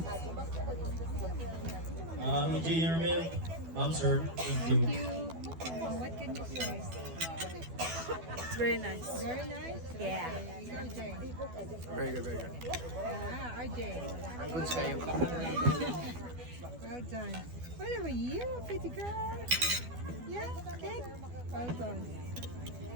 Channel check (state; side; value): late; left; 12 ms